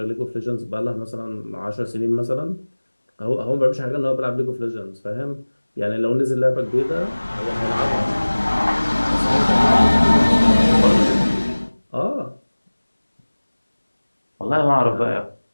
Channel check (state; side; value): inverted; both; correlation -1.00